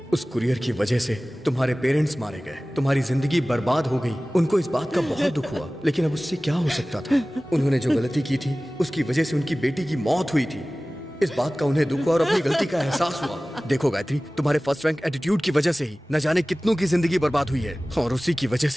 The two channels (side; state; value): both; normal; correlation 0.98